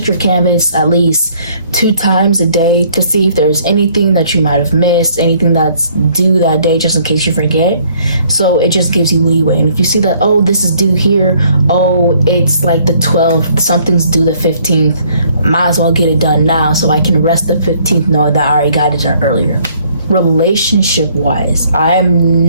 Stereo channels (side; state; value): both; inverted; correlation -0.62